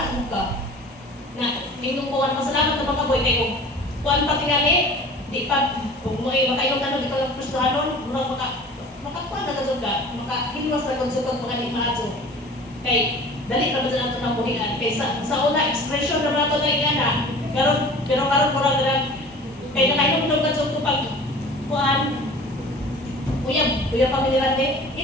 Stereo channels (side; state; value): both; normal; correlation 0.42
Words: mo ka. Na, tingong ko, masalamat na mga boy, kayo, kuhan pati nga di pa, kung mo ay makainom na di ka Kristohanon, makakuha na kasod ka, makahilos na kasod ka mga himado. Kay, dali na ba sa nato ng buhian? Kay sa una, expression na nato na ingana, pero karon mo lang kay nakainom na kasod ko pag kuhan, kuya pamilirante,